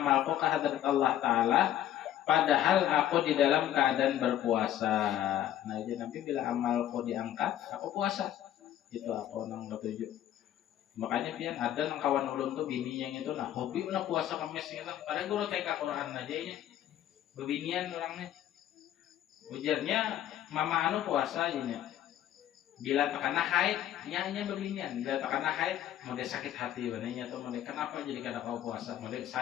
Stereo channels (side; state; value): right; quieter; 11.7 dB